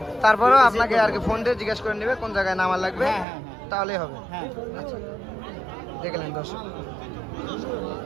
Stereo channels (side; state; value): left; drops out; at 3.2 s